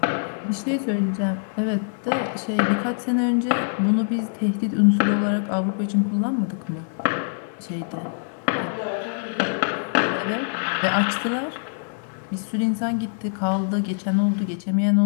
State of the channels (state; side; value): silent; right; 63 dB below the other